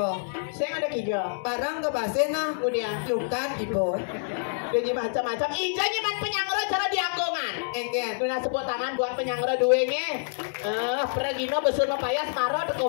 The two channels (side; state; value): right; silent; 60 dB below the other